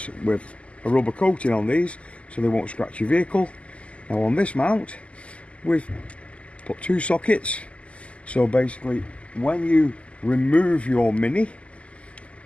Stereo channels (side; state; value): right; late; 0.059 ms